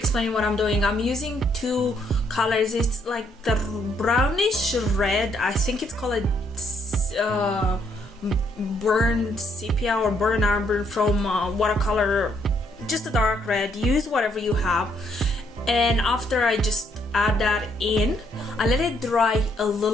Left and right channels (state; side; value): normal; both; correlation 0.72